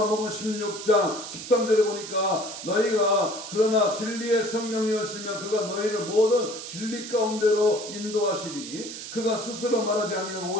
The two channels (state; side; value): noise; right; hiss, 10 dB below the sound